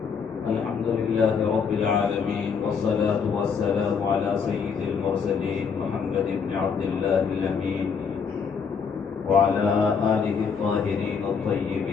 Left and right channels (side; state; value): right; quieter; 6.1 dB